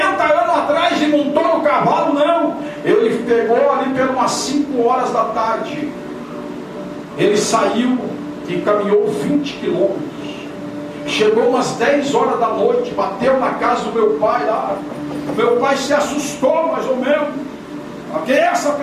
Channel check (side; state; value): both; identical; correlation 1.00